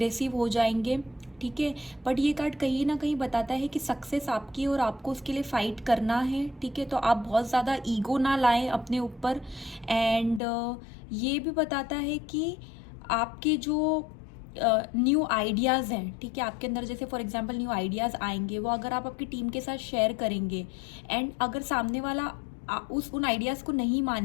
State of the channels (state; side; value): drops out; right; at 10.4 s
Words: हो जाएंगे। ठीक है। बट ये कार्ड कहीं ना कहीं बताता है कि सक्सेस आपकी और आपको उसके लिए फाइट करना है, ठीक है। तो आप बहुत ज़्यादा ईगो ना लाएं अपने ऊपर। एंड ये भी बताता है कि आपके जो न्यू आइडियाज़ हैं, ठीक है, आपके अंदर जैसे फॉर एग्जांपल न्यू आइडियाज़ आएंगे, वो अगर आप आपकी टीम के साथ शेयर करेंगे एंड अगर सामने वाला उन आइडियाज़ को नहीं